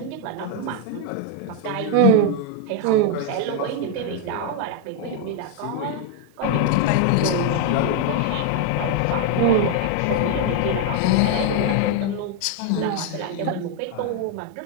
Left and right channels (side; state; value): both; different; correlation 0.01